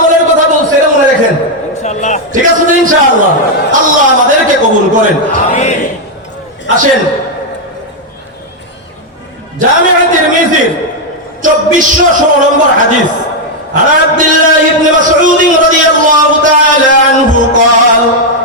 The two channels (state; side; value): normal; both; correlation 0.01